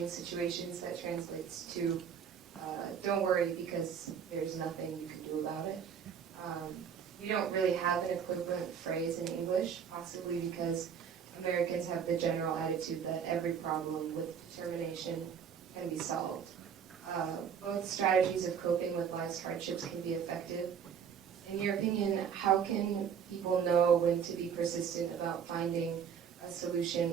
situations that translates to don't worry because there's nothing you can do about it. We don't really have an equivalent phrase in English, possibly because Americans have the general attitude that every problem with determination can be solved. Both strategies of coping with life's hardships can be effective. In your opinion, how can people know when to be persistent about finding a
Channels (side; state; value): left; quieter; 7.6 dB